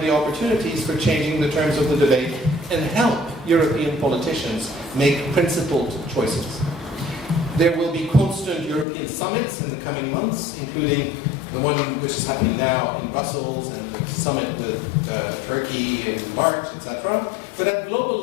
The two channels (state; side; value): drops out; right; at 8.8 s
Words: opportunities for changing the terms of the debate and help European politicians make principled choices. There will be constant European summits in the coming months, including the one which is happening now in Brussels and the summit with Turkey in March, etc. But at global